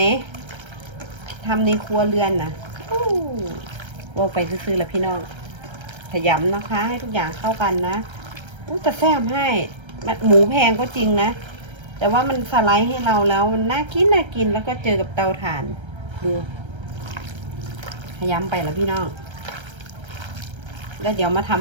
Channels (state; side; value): late; left; 1.3 ms